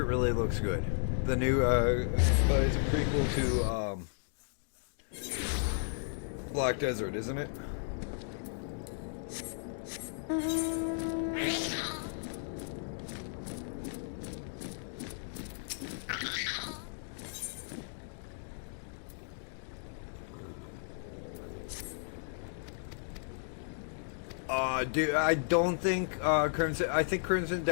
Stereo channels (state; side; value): silent; right; digital silence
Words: really looks good. The new, it's a prequel to, Black Desert, isn't it? Dude, I don't think, I think Crimson